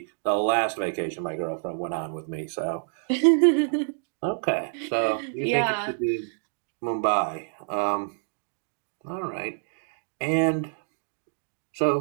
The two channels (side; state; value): left; silent; digital silence